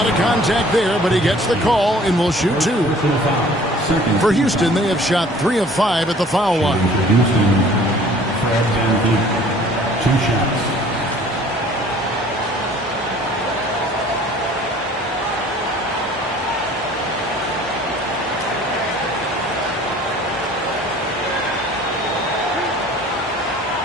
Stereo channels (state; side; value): normal; both; correlation 0.51